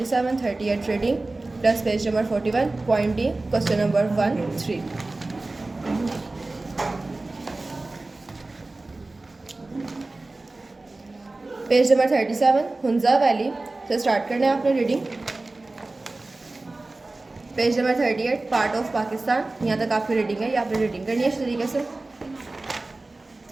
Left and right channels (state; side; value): quieter; left; 3.1 dB